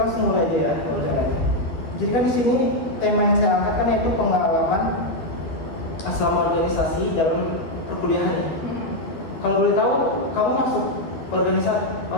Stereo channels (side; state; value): right; late; 12 ms